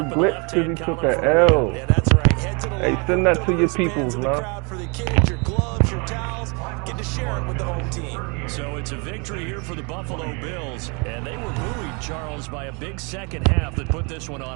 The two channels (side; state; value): left; quieter; 32.8 dB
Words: glitch because he took an L. Yeah, that's right. Head to the Hey, send that to your peoples, man. For the kids, your gloves, your towels, get to share it with the home team. So it's a victory here for the Buffalo Bills, and they were buoyed, Charles, by a big second half that put this one